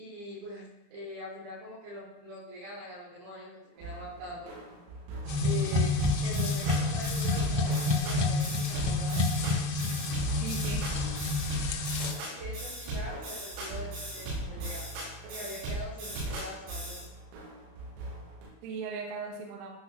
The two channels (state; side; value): late; left; 35 ms